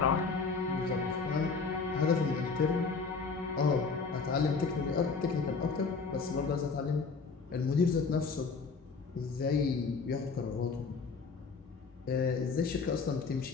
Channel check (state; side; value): quieter; right; 4.7 dB